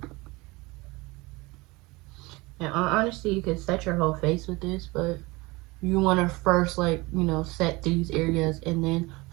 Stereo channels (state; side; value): quieter; left; 23.2 dB